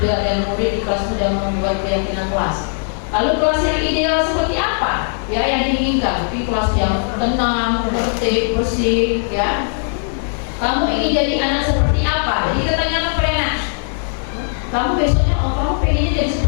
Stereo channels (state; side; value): silent; right; 67 dB below the other